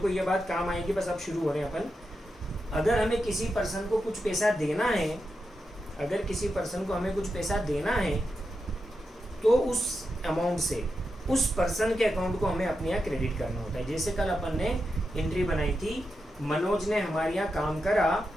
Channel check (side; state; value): both; normal; correlation 0.87